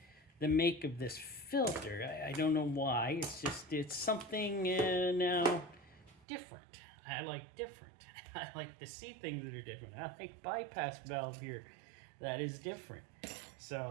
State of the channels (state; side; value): drops out; left; at 6.2 s